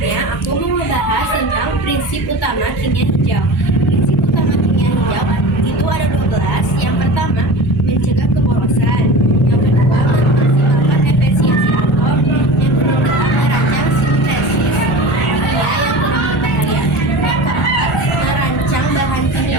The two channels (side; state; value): both; normal; correlation 0.32